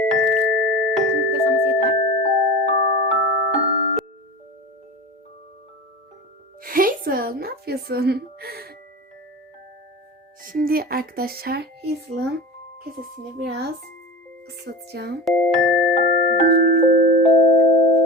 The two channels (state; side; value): normal; both; correlation 0.30